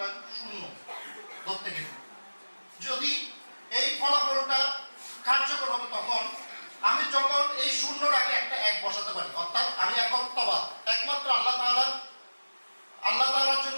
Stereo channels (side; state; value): both; inverted; correlation -1.00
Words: শূন্য ধরতে গেলে। যদি এই ফলাফলটা কার্যকর হবে তখন আমি যখন এই শূন্যর আগে একটা 1 বসাতে পারি, অর্থাৎ আমি একত্ববাদ, একমাত্র আল্লাহ তাআলার